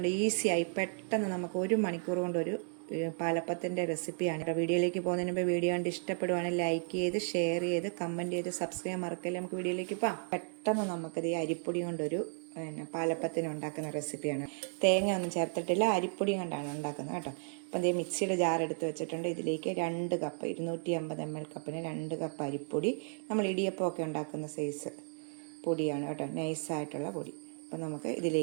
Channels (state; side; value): silent; left; 55 dB below the other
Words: ഈസിയായി പെട്ടെന്ന് നമുക്ക് 1 മണിക്കൂർ കൊണ്ട് ഒരു പാലപ്പത്തിൻ്റെ റെസിപ്പിയാണ് കേട്ടോ. വീഡിയോയിലേക്ക് പോകുന്നതിന് മുമ്പ് വീഡിയോ കണ്ട് ഇഷ്ടപ്പെടുവാണെങ്കിൽ ലൈക്ക് ചെയ്ത്, ഷെയർ ചെയ്ത്, കമൻറ്റ് ചെയ്ത്, സബ്സ്ക്രൈബ് മറക്കല്ലേ. നമുക്ക് വീഡിയോയിലേക്ക് പോകാം. പെട്ടെന്ന് നമുക്കത് ഈ അരിപ്പൊടി കൊണ്ടൊരു പാലപ്പത്തിന് ഉണ്ടാക്കുന്ന റെസിപ്പിയാണ്. തേങ്ങ ഒന്നും ചേർത്തിട്ടില്ല, അരിപ്പൊടി കൊണ്ടാണ് ഉണ്ടാക്കുന്നത് കേട്ടോ. അപ്പം അതേ മിക്സിയുടെ ജാർ എടുത്ത് വെച്ചിട്ടുണ്ട്. ഇതിലേക്ക് 2 കപ്പ് 250 ml കപ്പിന് 2 കപ്പ് അരിപ്പൊടി. നമ്മൾ ഇടിയപ്പമൊക്കെ ഉണ്ടാക്കുന്ന സൈസ് പൊടിയാണ് കേട്ടോ, നൈസായിട്ടുള്ള പൊടി. അപ്പം നമുക്ക്